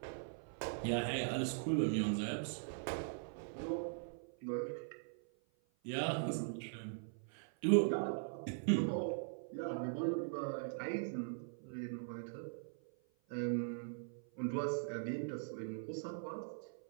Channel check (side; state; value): left; silent; 50 dB below the other